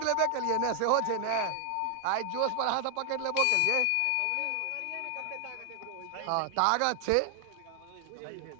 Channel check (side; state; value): both; different; correlation 0.00